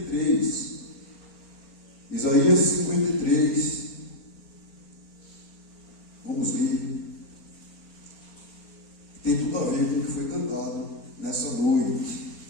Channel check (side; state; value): right; late; 4.3 ms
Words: Isaías 53. Vamos ler. Tem tudo a ver com o que foi cantado nessa noite.